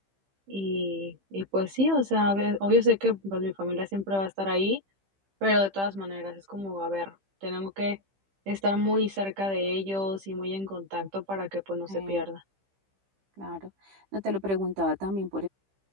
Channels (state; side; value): late; left; 15 ms